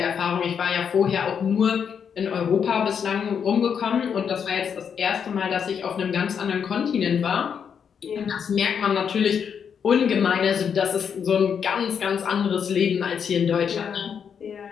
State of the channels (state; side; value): quieter; right; 7.3 dB